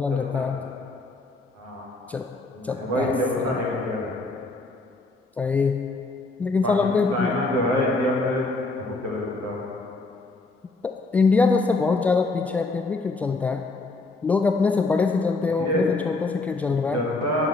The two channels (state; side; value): quieter; right; 3.4 dB